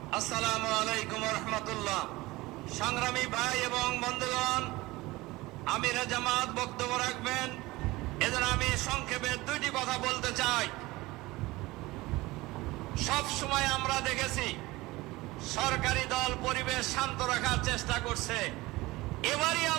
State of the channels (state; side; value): quieter; left; 20.4 dB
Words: আসসালামু আলাইকুম রহমতুল্লাহ। সংগ্রামী ভাই এবং বন্ধুগণ, আমিরে জামাত বক্তব্য রাখবেন, এজন্য আমি সংক্ষেপে 2টি কথা বলতে চাই। সব সময় আমরা দেখেছি সরকারি দল পরিবেশ শান্ত রাখার চেষ্টা করছে। এবারই